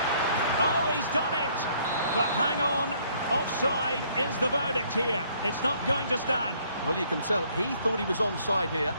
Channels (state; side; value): inverted; both; correlation -0.64